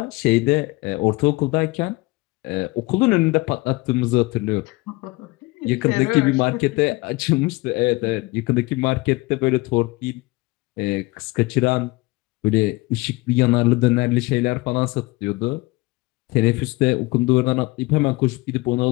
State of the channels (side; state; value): right; quieter; 22.7 dB